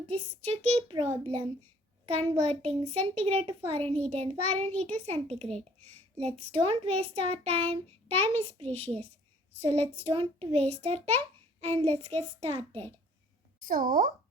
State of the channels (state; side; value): normal; both; correlation 0.57